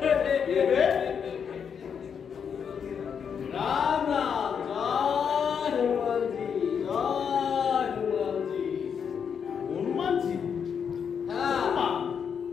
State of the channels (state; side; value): quieter; right; 7.1 dB